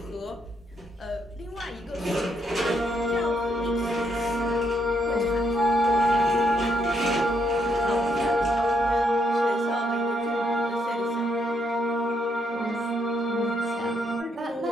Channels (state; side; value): normal; both; correlation 0.75